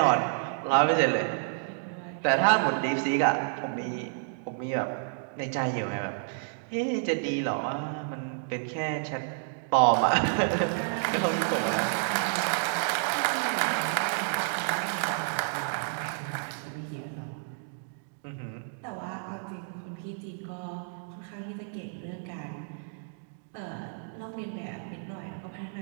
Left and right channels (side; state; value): left; silent; digital silence